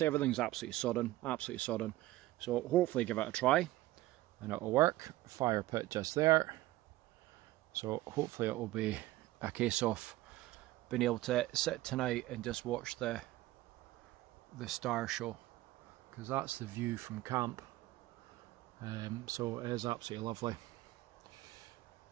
everything's absolutely sodden, so hopefully give it a try and it'll work. Fire pit just there, so hopefully it will be a case of being able to sit tonight and just watch the star show, because that's the view from camp. So it is absolutely lovely.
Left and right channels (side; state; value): left; quieter; 16.9 dB